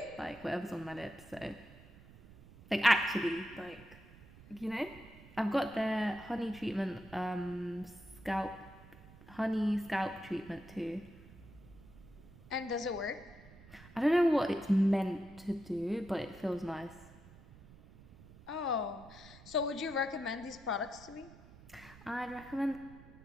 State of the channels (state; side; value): noise; right; rumble, 20 dB below the sound